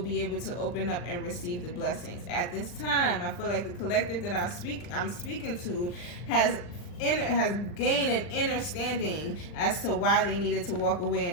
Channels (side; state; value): right; late; 39 ms